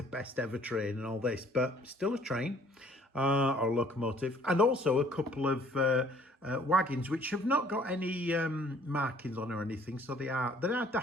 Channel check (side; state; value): both; normal; correlation 0.58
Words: best ever train and all this, but still a train or a locomotive, and also a couple of wagons which have not got any markings on or anything, so they are